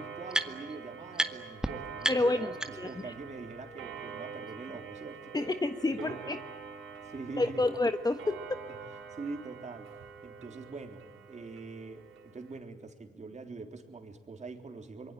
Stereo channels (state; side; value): normal; both; correlation 0.75